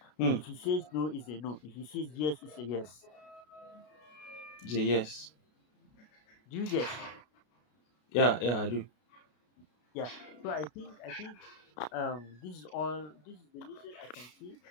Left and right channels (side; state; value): right; late; 33 ms